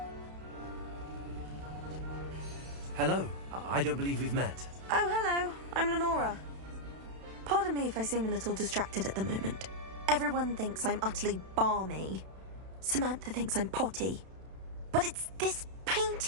Hello. I don't believe we've met. Oh, hello. I'm Lenora. Pardon me if I seem a little distracted at the moment. Everyone thinks I'm utterly balmy. Samantha thinks I'm potty. But it's this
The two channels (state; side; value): late; left; 31 ms